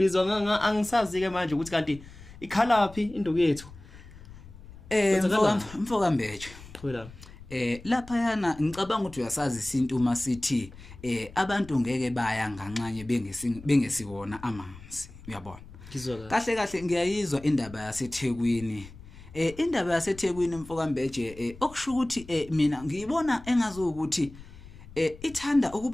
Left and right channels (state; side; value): noise; left; rumble, 18 dB below the sound